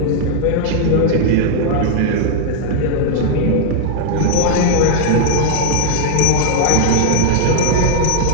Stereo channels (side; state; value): both; different; correlation 0.00